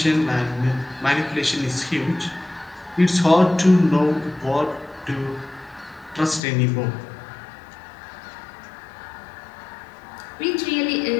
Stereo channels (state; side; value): drops out; right; at 6.4 s